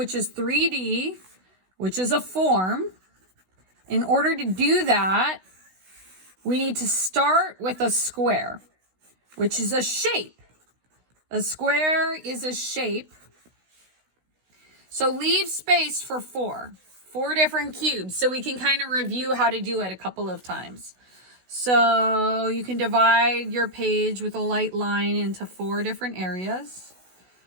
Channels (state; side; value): late; left; 16 ms